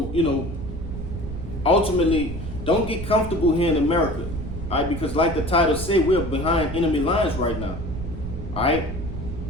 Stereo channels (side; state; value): right; noise; rumble, 7 dB below the sound